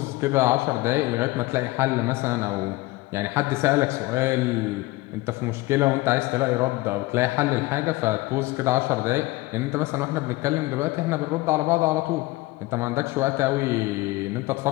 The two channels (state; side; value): quieter; right; 20.2 dB